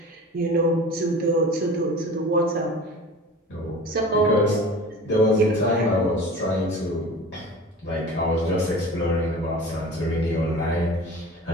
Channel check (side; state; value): both; normal; correlation 0.38